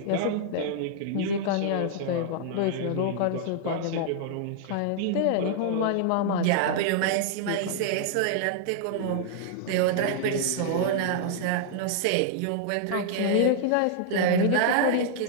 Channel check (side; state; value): both; different; correlation -0.01